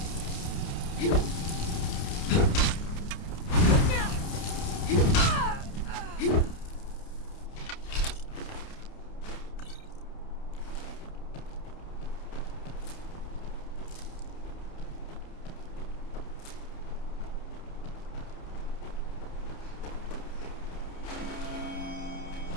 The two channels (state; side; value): late; right; 29 ms